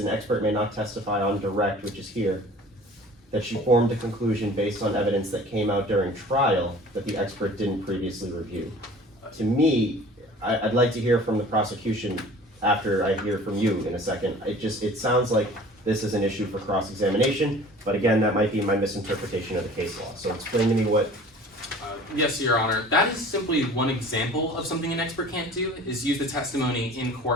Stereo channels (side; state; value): both; normal; correlation 0.46